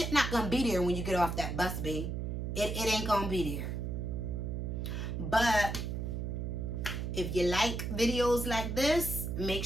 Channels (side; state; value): right; noise; hum, 3 dB below the sound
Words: not gonna be there when you get off that bus, babe. It ain't gonna be there. But if you like videos like this, make